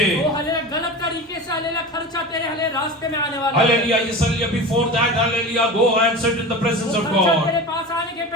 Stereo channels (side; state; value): both; normal; correlation 0.31